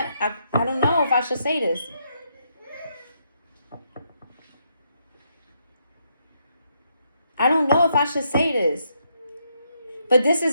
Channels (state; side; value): inverted; both; correlation -0.77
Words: don't know if I should say this. I don't know if I should say this. But this